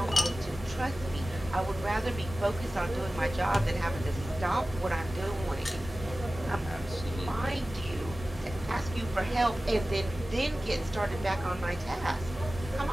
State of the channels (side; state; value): both; normal; correlation 0.96